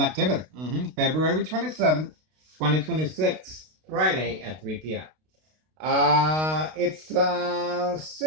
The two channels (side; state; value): left; late; 32 ms